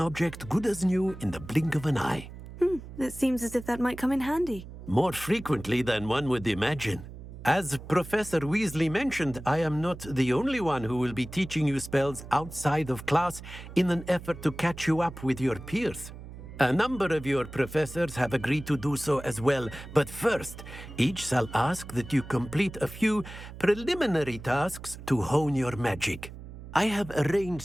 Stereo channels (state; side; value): noise; right; hum, 14 dB below the sound